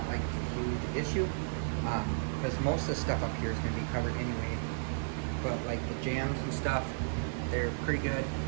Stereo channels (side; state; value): left; silent; 55 dB below the other